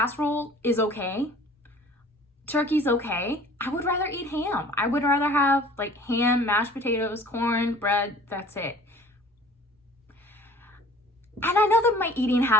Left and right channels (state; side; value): normal; both; correlation 0.49